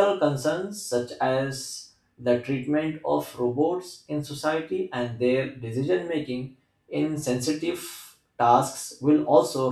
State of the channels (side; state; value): both; identical; correlation 1.00